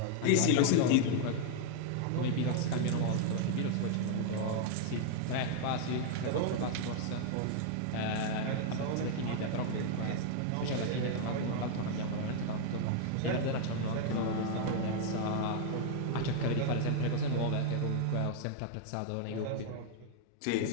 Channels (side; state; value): both; different; correlation 0.00